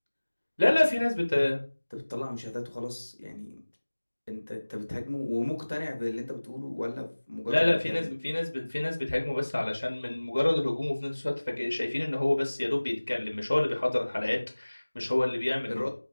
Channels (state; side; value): inverted; both; correlation -1.00